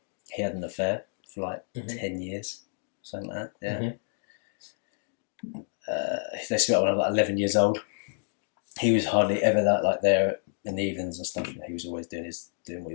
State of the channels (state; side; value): silent; right; digital silence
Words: He had an affair for like 10 years, something like that. Yeah. They split up when I was like 11 years old. He was hardly ever that like there in the evenings and stuff. He was always doing what he